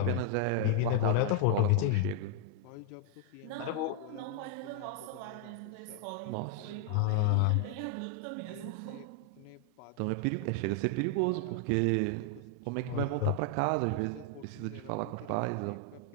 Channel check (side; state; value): both; different; correlation 0.00